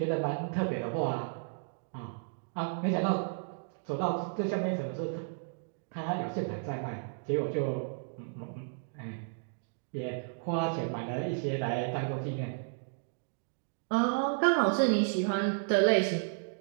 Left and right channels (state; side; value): silent; left; digital silence